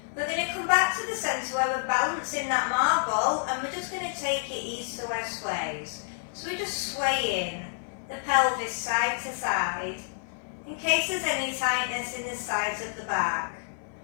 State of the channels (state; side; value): silent; right; 57 dB below the other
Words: We're going to come back to the centre where we're balancing that marble, and we're just going to take it east to west sways. So we're just swaying the pelvis side to side in case there's any tightness in the sides of the back.